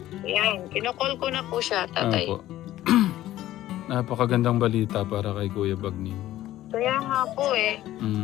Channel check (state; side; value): quieter; right; 14.3 dB